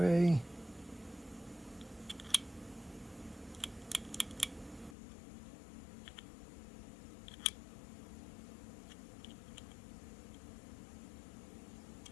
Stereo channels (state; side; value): drops out; right; at 5.0 s